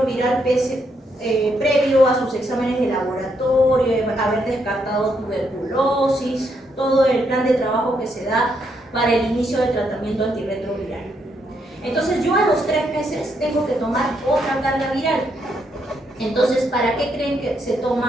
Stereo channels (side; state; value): both; normal; correlation 0.77